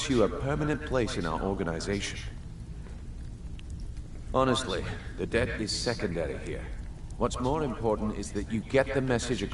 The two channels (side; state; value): both; identical; correlation 1.00